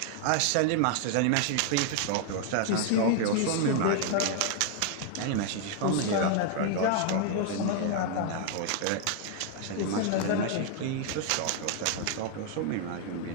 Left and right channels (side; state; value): both; different; correlation 0.00